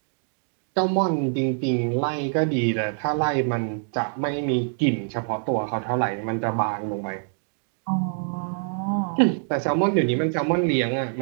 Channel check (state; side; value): silent; left; 62 dB below the other